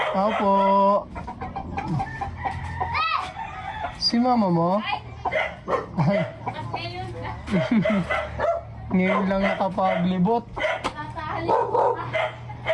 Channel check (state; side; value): identical; both; correlation 1.00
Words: Opo. Si mama mo? Ay. Ngayon lang nakapaglibot.